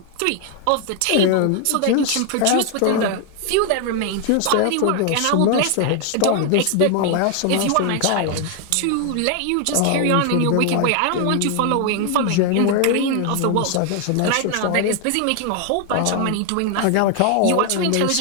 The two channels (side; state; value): both; different; correlation 0.00